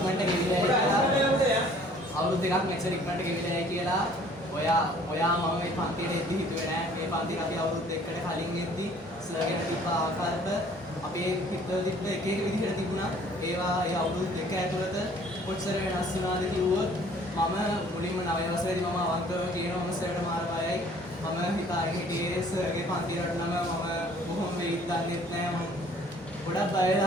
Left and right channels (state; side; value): normal; both; correlation 0.55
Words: මෙච්චර ඉක්මනට ගෙවිලා කියලා ඔයා මම මේ පන්තියට එද්දි හිතුවේ නෑ මේ පන්තියට අපි අවුරුදු දෙකකට කලින් එද්දි සර්ගෙන තිබ්බ ආකල්ප අපේ හිතවල තිබ්බ එක විදිහට තිබුණා. ඒවා ඒ අවුරුදු දෙක ඇතුළත කොච්චර වෙනස් වුණාද කිව්වොත් මම මුලින්ම 9 වසරේදී මම අවංකව කියනවා මම සර්ට මාර බයයි. මම හිතාගෙන හිටියේ සර්ගේ පන්තියට නම් මම බොහොම වෙයිත් දන්නෙත් නෑ. මම ගොඩක් බය